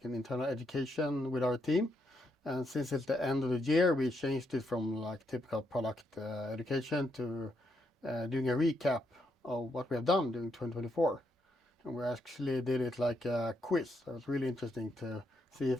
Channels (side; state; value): both; normal; correlation 0.78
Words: an internal education with our team, and since it's the end of the year, we changed it from like typical product education to doing a recap of what we have done during 2024. And we actually did it like a quiz. So it was really interesting to see